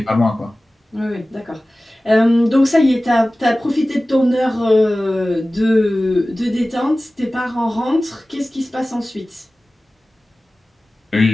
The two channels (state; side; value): normal; both; correlation 0.97